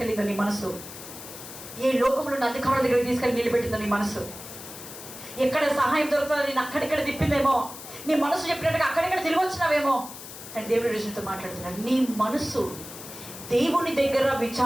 నీ మనసు, ఏ లోకంలో ఉన్న అధికారుల దగ్గరికి తీసుకెళ్ళి నిలబెట్టిందో నీ మనసు, ఎక్కడ సహాయం దొరుకుతుందో నేను అక్కడెక్కడ తిప్పిందేమో, నీ మనసు చెప్పినట్టుగా అక్కడెక్కడ తిరిగి వచ్చినావేమో. కానీ దేవుడి రుజువుతో మాట్లాడుతున్నాడు, నీ మనసు దేవుని దగ్గర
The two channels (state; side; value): noise; left; hiss, 13 dB below the sound